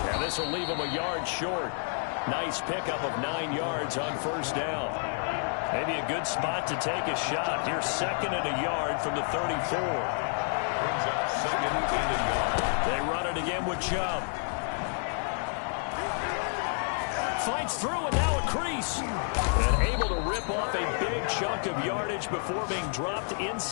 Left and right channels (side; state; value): right; silent; 58 dB below the other